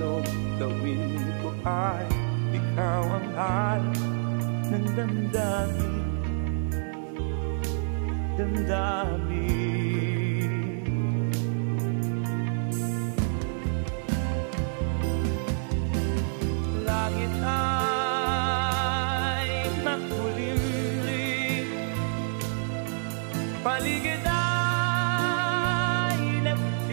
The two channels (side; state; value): left; silent; digital silence